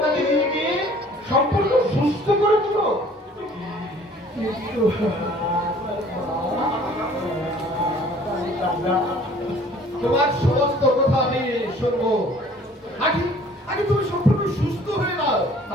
নিয়ে গিয়ে সম্পূর্ণ সুস্থ করে দিল। তোমার সমস্ত কথা আমি শুনবো। আগে তুমি সম্পূর্ণ সুস্থ হয়ে নাও,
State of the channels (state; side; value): normal; both; correlation 0.53